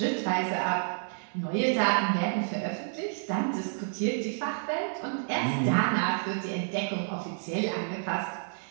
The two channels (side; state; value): left; silent; 58 dB below the other